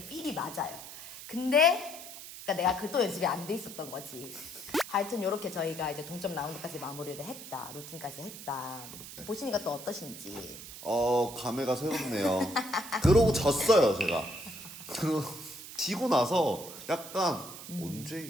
필이 맞아요. 근데 그러니까 내가 그 또 연습이 안 돼 있었던 거지. 하여튼 이렇게 저희가 이제 동점 라운드까지 마무리를 했다. 루틴까지 했다. 보시니까 또 어떠신지. 감회가 새롭네요. 그러고 졌어요 제가. 지고 나서 약간 언제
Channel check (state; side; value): noise; right; hiss, 12 dB below the sound